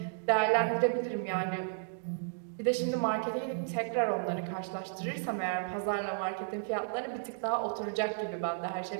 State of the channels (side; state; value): left; silent; digital silence